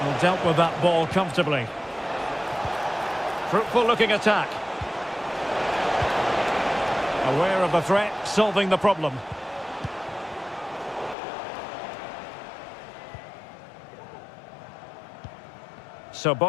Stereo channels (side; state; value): right; drops out; at 11.2 s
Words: Well, dealt with that ball comfortably. Fruitful looking attack. Aware of the threat, solving the problem. So